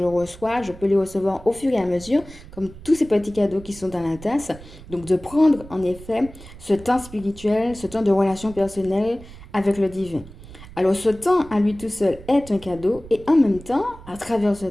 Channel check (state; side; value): noise; right; rumble, 18 dB below the sound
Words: reçois, je peux les recevoir au fur et à mesure, comme tous ces petits cadeaux qui sont dans la tasse. Donc de prendre en effet ce temps spirituel, ce temps de relation personnelle avec le divin. Alors ce temps à lui tout seul est un cadeau et en même temps, à travers ce